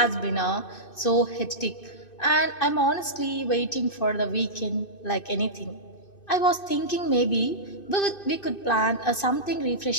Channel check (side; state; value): right; late; 2.6 ms